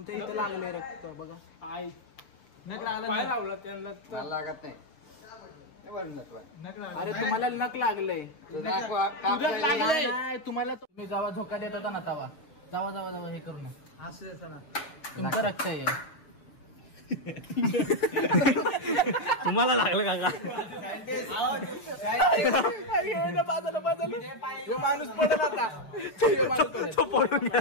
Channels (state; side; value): late; right; 6.8 ms